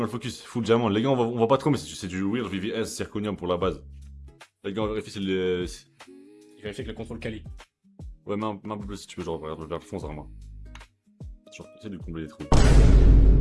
le focus. Full diamant. Les gars, on va pas trop, mais c'est du Weird VVS zirconium pour la base. Les gars, on vérifie si le. Il vérifie que le contrôle quali. Ouais, mais un peu plus si tu veux, genre, vers le fond, vraiment. Genre, essaie de combler les trous.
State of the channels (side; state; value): both; identical; correlation 1.00